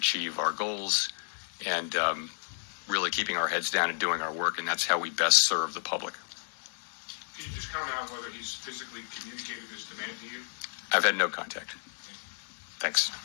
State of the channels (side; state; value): right; silent; digital silence